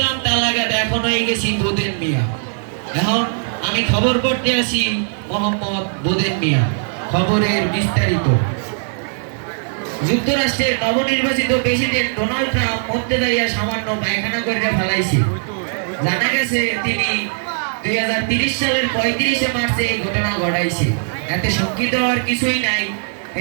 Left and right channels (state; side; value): silent; left; digital silence